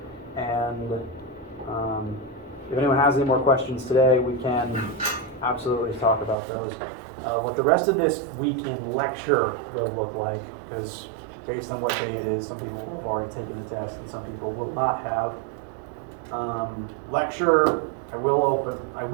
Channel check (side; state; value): left; drops out; at 6.4 s